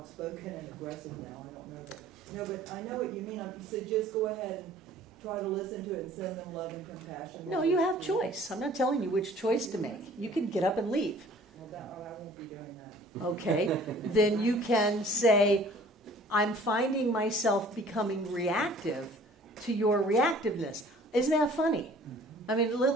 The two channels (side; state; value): both; normal; correlation 0.52